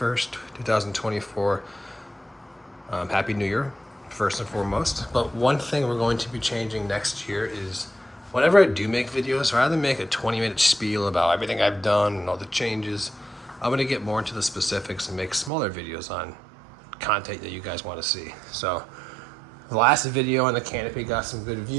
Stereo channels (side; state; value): left; drops out; at 15.5 s